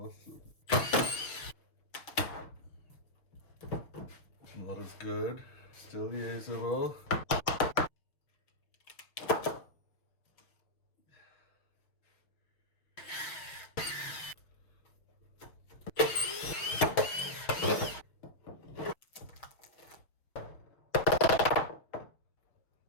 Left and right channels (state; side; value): late; right; 6.2 ms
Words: Not as good, still usable.